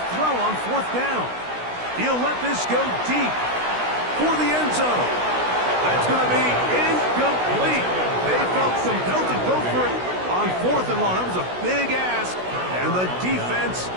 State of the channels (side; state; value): left; late; 16 ms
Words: throw on 4th down. He'll let this go deep for the end zone. That's going to be incomplete. They felt compelled to go for it on 4th and long. That was a big ask, and the defense